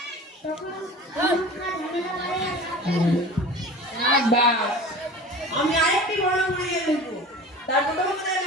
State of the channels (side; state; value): both; normal; correlation 0.38